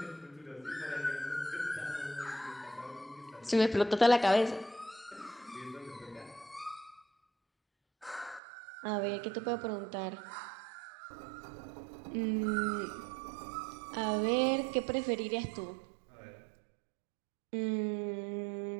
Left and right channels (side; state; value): left; drops out; at 8.4 s